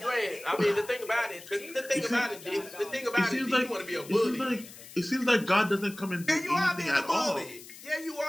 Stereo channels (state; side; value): noise; left; hiss, 17 dB below the sound